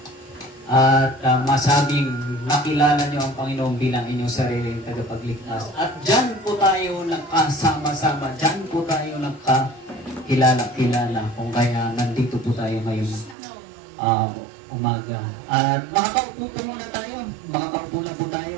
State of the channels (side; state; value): left; drops out; at 13.4 s